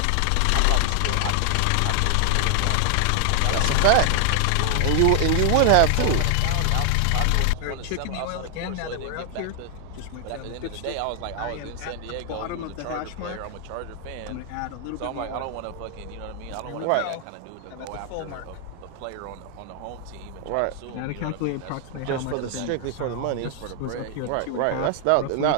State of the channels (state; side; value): different; both; correlation 0.00